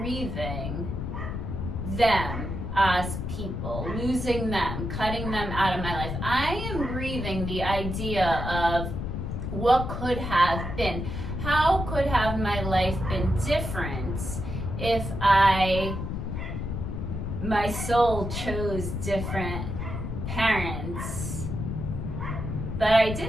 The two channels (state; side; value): noise; left; rumble, 4 dB below the sound